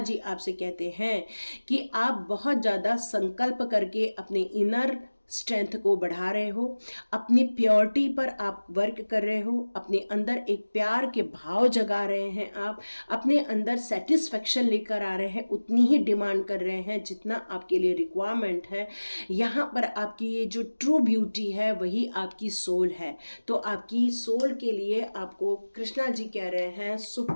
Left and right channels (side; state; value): both; inverted; correlation -1.00